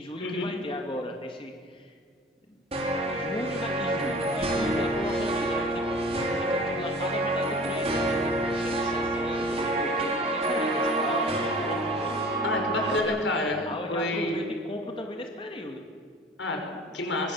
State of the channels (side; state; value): both; normal; correlation 0.43